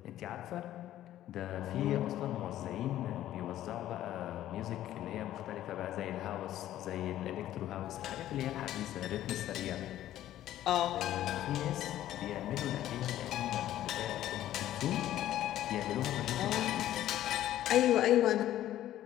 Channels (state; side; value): quieter; right; 13.0 dB